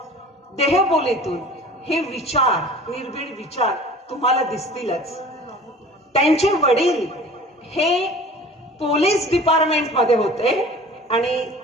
देहबोलीतून हे विचार, निर्भीड विचार तुम्हाला दिसतीलच. त्यांचे वडील हे पोलीस डिपार्टमेंट मध्ये होते आणि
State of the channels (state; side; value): normal; both; correlation 0.44